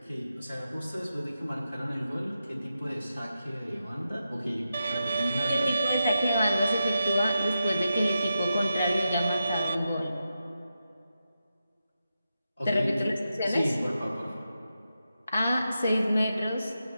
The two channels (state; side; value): inverted; both; correlation -0.89